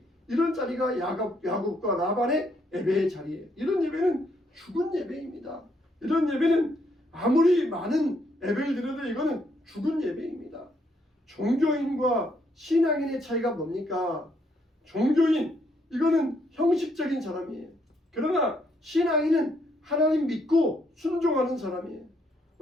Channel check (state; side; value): normal; both; correlation 0.73